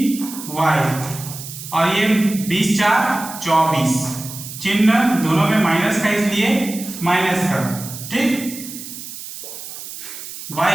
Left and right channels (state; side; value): noise; right; hiss, 11 dB below the sound